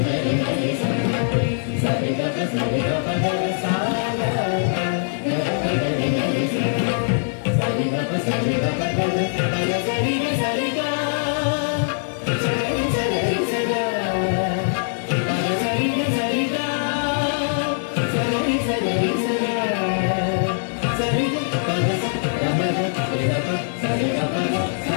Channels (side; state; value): right; silent; digital silence